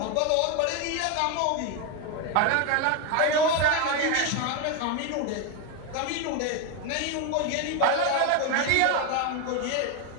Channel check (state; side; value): different; both; correlation 0.02